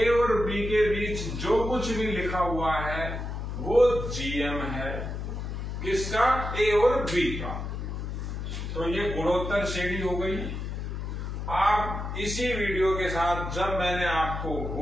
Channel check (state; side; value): noise; left; hum, 5 dB below the sound